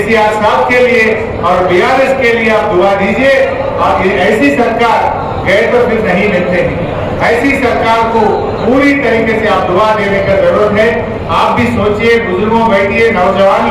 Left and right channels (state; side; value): identical; both; correlation 1.00